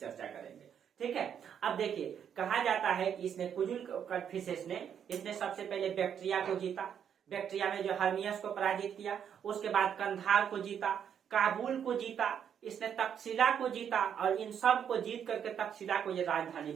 करेंगे, ठीक है। अब देखिए कहा जाता है कि इसने कुजुल कड़फिसेस ने इसने सबसे पहले बैक्ट्रिया को जीता, बैक्ट्रिया में जो हर्मियस को पराजित किया, उसके बाद कंधार को जीता, काबुल को जीता, इसने तक्षशिला को जीता और इन सब को जीत करके तक्षशिला को ये राजधानी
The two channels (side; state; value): left; quieter; 8.4 dB